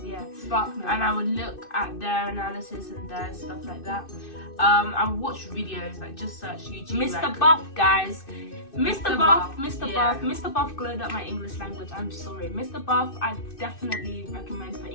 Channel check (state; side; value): late; right; 2.6 ms